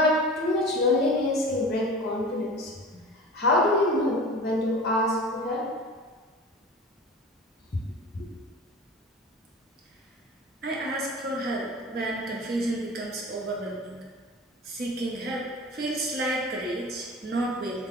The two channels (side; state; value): both; normal; correlation 0.37